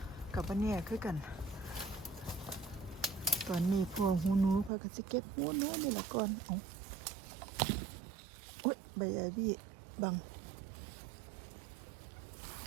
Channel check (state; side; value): drops out; left; at 4.7 s